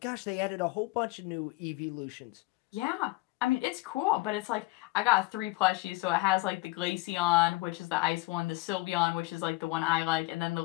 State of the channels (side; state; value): right; quieter; 21.8 dB